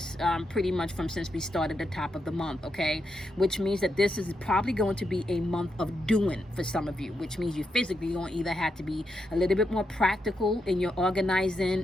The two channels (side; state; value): both; normal; correlation 0.83